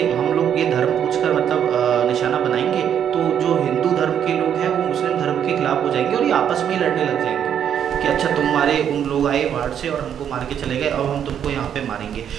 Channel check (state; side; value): quieter; left; 9.0 dB